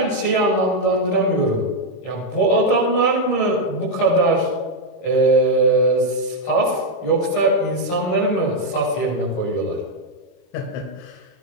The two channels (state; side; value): late; right; 23 ms